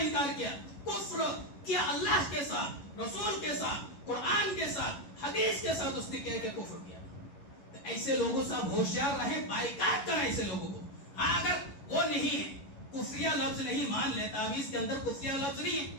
کیا، کفر کیا اللہ کے ساتھ، رسول کے ساتھ، قرآن کے ساتھ، حدیث کے ساتھ اس نے کیا کہ کفر کیا. تو ایسے لوگوں سے آپ ہوشیار رہیں، بائیکاٹ کریں ایسے لوگوں کو. ہاں اگر وہ نہیں ہے، کفریہ لفظ نہیں مان لے، تعویذ کے اندر کفریہ لفظ نہیں ہے،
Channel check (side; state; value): right; late; 11 ms